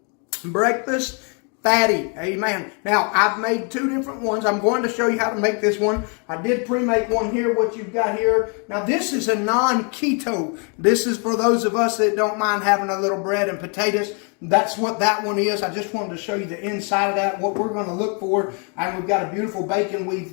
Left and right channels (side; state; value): right; quieter; 37.4 dB